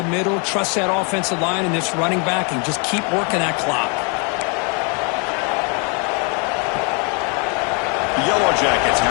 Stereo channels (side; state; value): right; quieter; 35.4 dB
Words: middle. Trust that offensive line and this running back and just keep working that clock. The Yellow Jackets